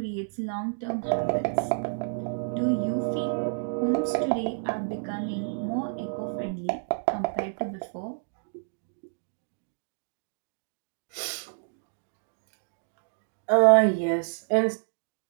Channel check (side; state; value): left; silent; digital silence